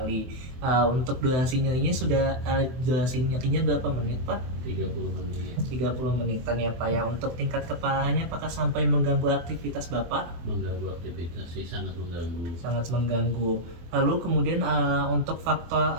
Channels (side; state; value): left; late; 23 ms